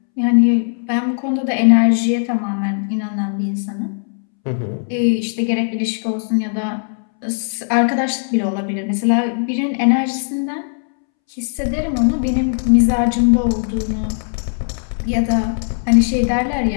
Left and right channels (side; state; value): right; silent; 67 dB below the other